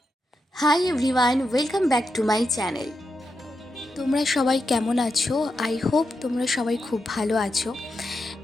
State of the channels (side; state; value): both; normal; correlation 0.86